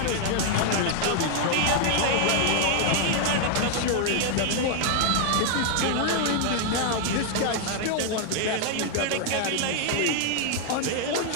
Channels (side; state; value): both; different; correlation 0.00